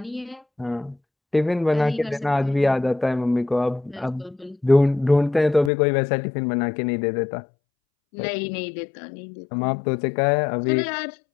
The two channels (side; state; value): right; drops out; at 5.7 s